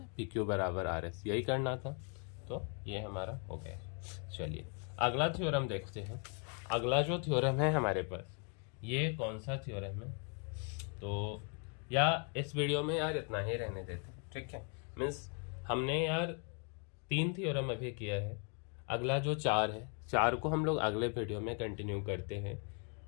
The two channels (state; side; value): quieter; right; 39.6 dB